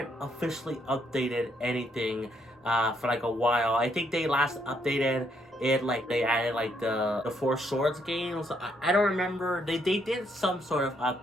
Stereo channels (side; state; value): both; normal; correlation 0.73